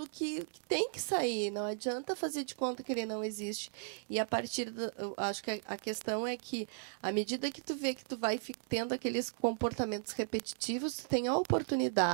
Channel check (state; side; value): silent; left; digital silence